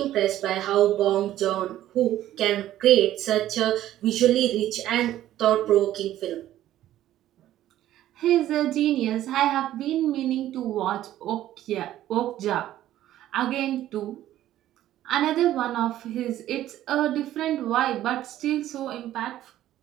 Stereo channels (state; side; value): quieter; left; 13.2 dB